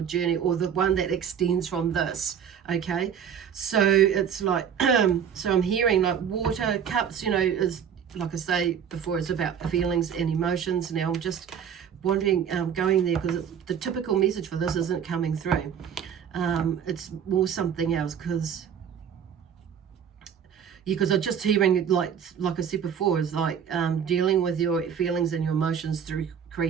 journey, or the one that extends from this. Okay, so it's like, so I'm hearing like water cups, you know, is, like I say before, it's about feelings and emotions. Now I'm just wondering, going there, because the typical message for this isn't coming through. It's more something else, because I'm just hearing, like I said before, is like dealing with your feelings and your emotions through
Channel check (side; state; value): left; quieter; 8.0 dB